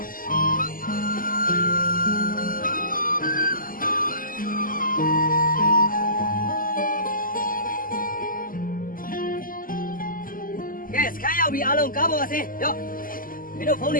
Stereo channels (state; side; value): late; right; 0.41 ms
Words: ကဲစခန်းရောက်ပြီအားလုံးကားပေါ်အဆင်းရော့မင်းတို့ဖုန်းတွ